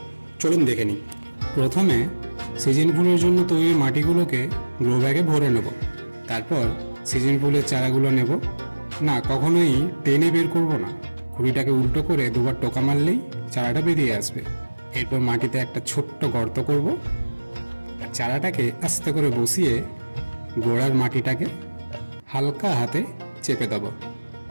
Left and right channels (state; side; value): inverted; both; correlation -1.00